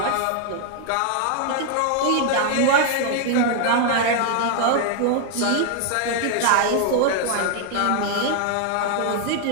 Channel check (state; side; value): different; both; correlation 0.00